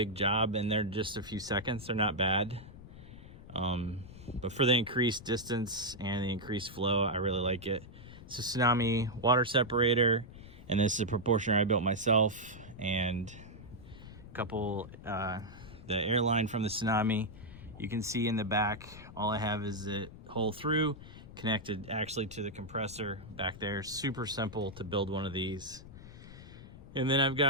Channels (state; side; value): noise; left; rumble, 16 dB below the sound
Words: job, and they're just a few seconds. They're not bad. But for the increased distance and the increased flow, I really like it. It's a Tsunami water separator, and this is a proportioner I built myself, and a couple, the airline from the Tsunami. You can see in the back, all I have is it hole through, connected actually to the compressor back there. Super simple to build one of these. And then I've